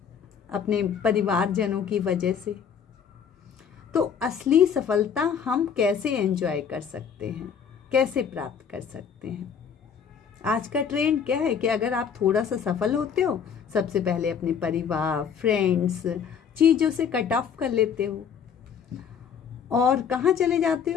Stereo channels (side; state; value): right; quieter; 7.2 dB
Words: अपने परिवारजनों की वजह से। तो असली सफलता हम कैसे एंजॉय कर सकते हैं, कैसे प्राप्त कर सकते हैं? आज का ट्रेंड क्या है कि अगर आप थोड़ा सा सफल होते हो, सबसे पहले अपने परिवार, फ्रेंड्स, चीज़ों से कट ऑफ कर लेते हो और कहाँ चले जाते